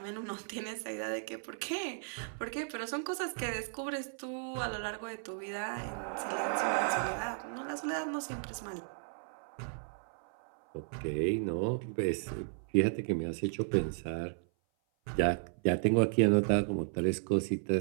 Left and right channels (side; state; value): left; silent; 55 dB below the other